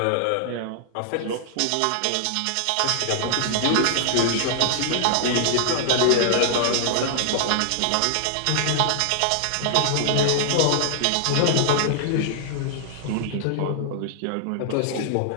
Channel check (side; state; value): both; different; correlation -0.01